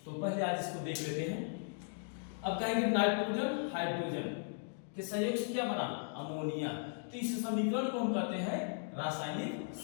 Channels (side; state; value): right; silent; digital silence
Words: तो पहले आज इसको देख लेते हैं। अब कहेंगे नाइट्रोजन हाइड्रोजन के संयोग से क्या बना, अमोनिया। तो इस समीकरण को हम कहते हैं रासायनिक